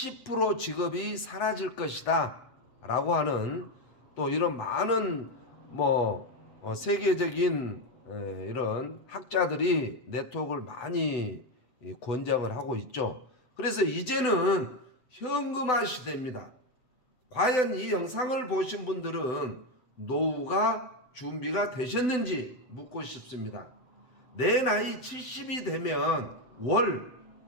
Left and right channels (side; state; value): right; late; 7.8 ms